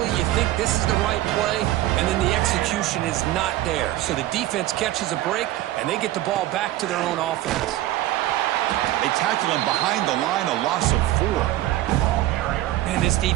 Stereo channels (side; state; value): left; quieter; 15.3 dB